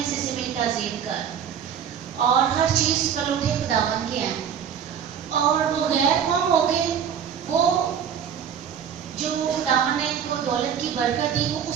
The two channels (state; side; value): quieter; left; 8.2 dB